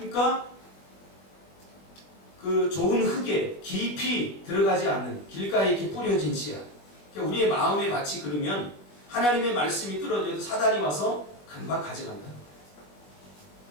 그 좋은 흙에 깊이 들어가지 않는 길가에 이렇게 뿌려진 씨앗. 그러니까 우리의 마음의 밭이 그러면 하나님의 말씀이 떨어져도 사단이 와서 금방 가져간다.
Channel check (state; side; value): late; right; 21 ms